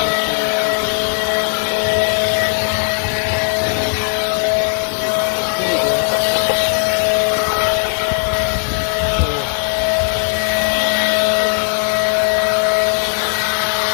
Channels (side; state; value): right; silent; 68 dB below the other